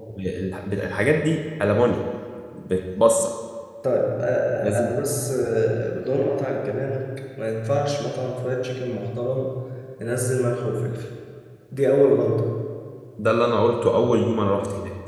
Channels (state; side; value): identical; both; correlation 1.00